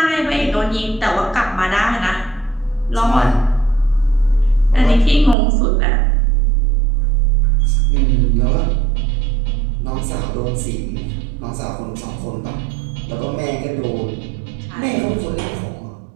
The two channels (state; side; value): drops out; left; at 5.4 s